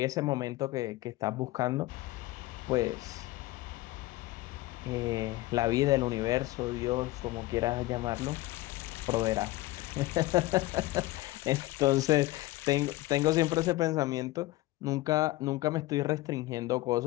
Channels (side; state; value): right; quieter; 18.4 dB